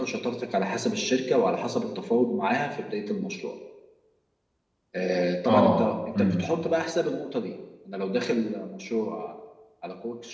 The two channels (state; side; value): identical; both; correlation 1.00